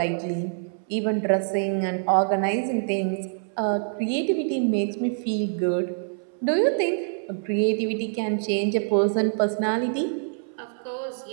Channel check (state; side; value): silent; left; 61 dB below the other